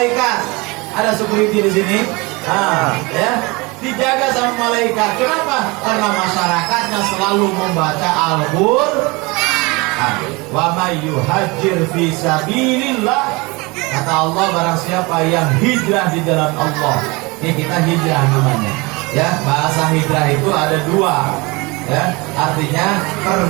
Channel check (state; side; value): quieter; left; 25.6 dB